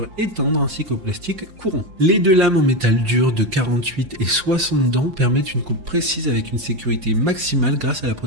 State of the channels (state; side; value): late; left; 5.7 ms